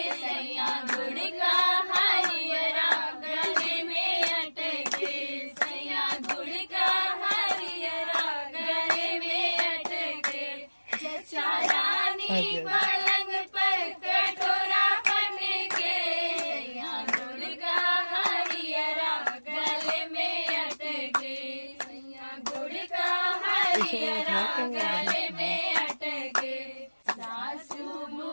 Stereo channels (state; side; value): inverted; both; correlation -1.00